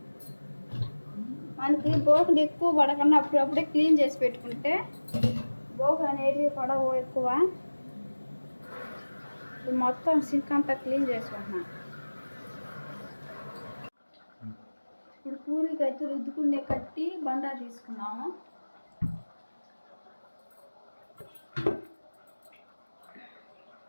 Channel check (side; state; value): both; inverted; correlation -1.00